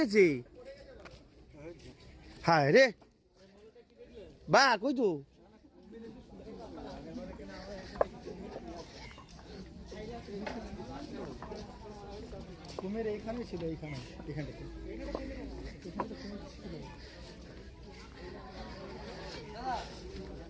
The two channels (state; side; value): identical; both; correlation 1.00